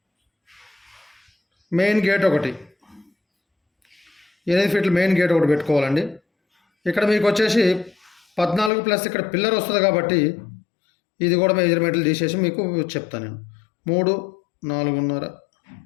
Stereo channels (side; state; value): right; drops out; at 8.7 s